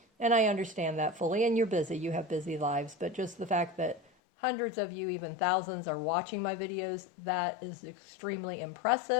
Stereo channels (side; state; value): right; drops out; at 4.0 s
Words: and I understand that fully, and you're busy, you have busy lives, but just the fact that hundreds of you, even thousands, are watching my videos, that is extremely